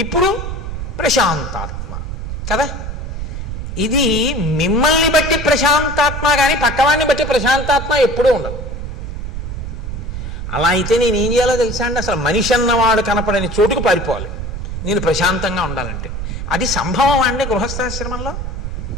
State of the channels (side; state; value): right; noise; rumble, 6 dB below the sound